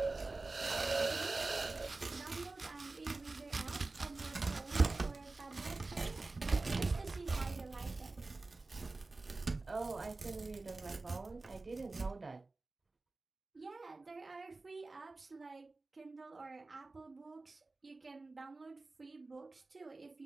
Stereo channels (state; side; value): quieter; left; 3.4 dB